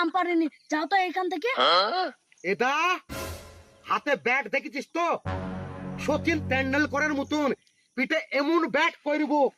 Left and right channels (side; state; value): both; identical; correlation 1.00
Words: আম পারিনি, যাও তো এখান থেকে। এটা হাতে ব্যাট দেখেছিস তো? সচিন তেন্ডুলকরের মতন পিঠে এমন ব্যাট করব